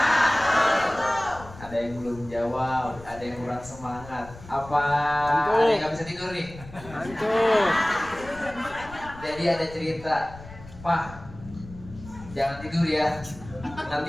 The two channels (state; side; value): noise; left; rumble, 17 dB below the sound